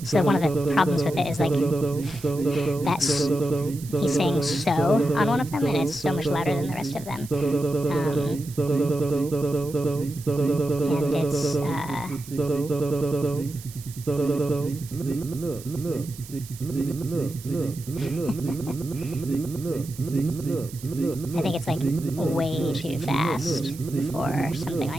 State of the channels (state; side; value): noise; right; hiss, 17 dB below the sound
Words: So one of the problems with it is like he's saying so on one of them, and it's so much louder than the rest of them. And it's I think it's like way too fast for something